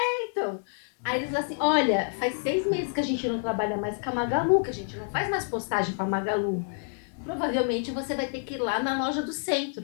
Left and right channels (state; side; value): silent; right; 59 dB below the other